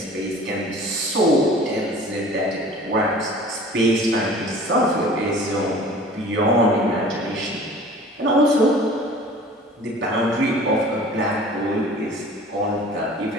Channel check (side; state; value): both; normal; correlation 0.45